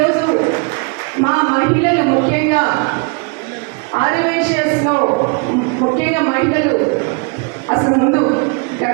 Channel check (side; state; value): left; quieter; 33.4 dB